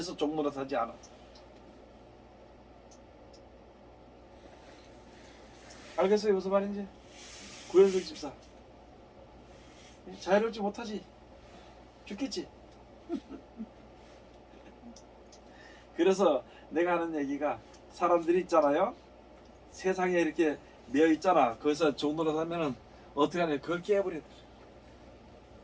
종노릇하지 않아. 알겠어요? 무슨 말인지? 구현석 집사 자유롭지 못하지? 죽겠지? 그래서 내가 하는 얘기가 사람들이 있잖아요 세상에 이렇게 매여 있잖아 거기서 종노릇 하면은 어떻게 하냐 그걸 깨버려.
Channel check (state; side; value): identical; both; correlation 1.00